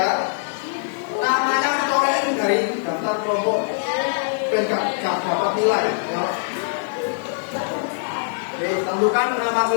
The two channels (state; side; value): silent; right; digital silence